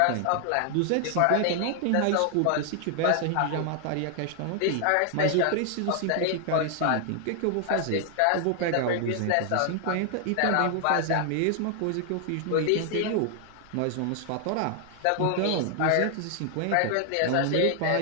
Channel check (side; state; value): both; different; correlation 0.00